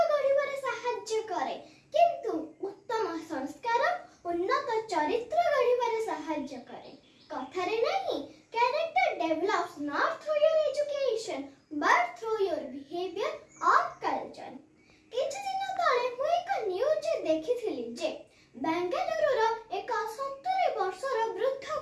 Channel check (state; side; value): identical; both; correlation 1.00